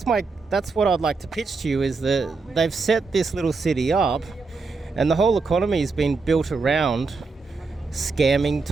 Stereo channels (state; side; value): quieter; left; 4.2 dB